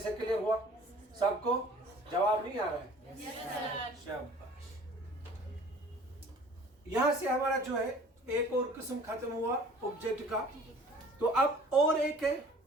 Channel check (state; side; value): normal; both; correlation 0.50